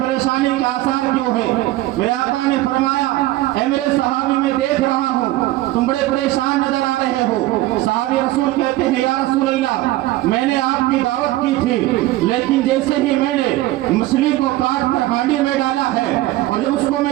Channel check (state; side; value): quieter; left; 16.8 dB